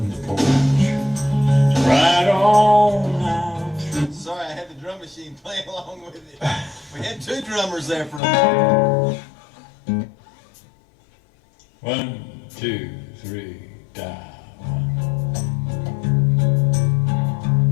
the porch, right on out through. Sorry, I had the drum machine playing along with it. We had two drummers there for a minute. 1, 2, 3, dive.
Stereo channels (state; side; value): drops out; right; at 8.2 s